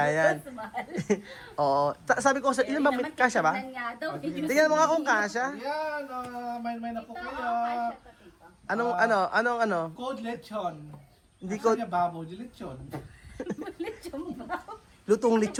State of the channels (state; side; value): identical; both; correlation 1.00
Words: yan. Mas mahal. Oo. Sabi ko, ilan ba? Naman, Kasya ba? tignan nga daw. Tingnan mo nga kung kasya. Yan, may na po Ito, kayo. kasya pa dito. Anong? Code lechon. Hindi Asa ko, niya babo, di lechon. Lechon ba? lutong